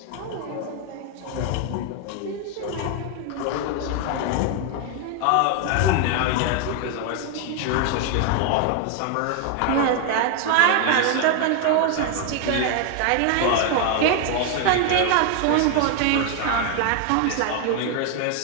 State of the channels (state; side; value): different; both; correlation 0.00